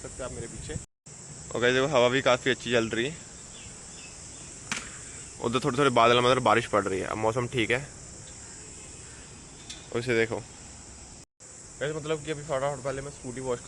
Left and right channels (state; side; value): identical; both; correlation 1.00